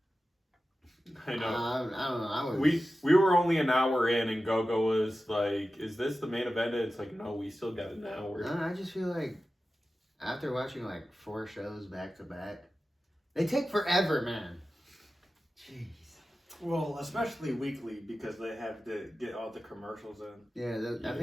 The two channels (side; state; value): both; normal; correlation 0.94